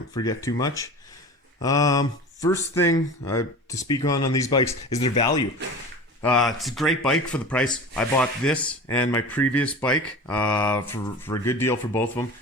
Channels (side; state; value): both; normal; correlation 0.34